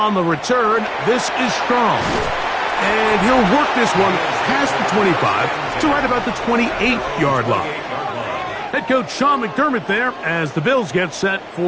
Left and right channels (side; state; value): both; identical; correlation 1.00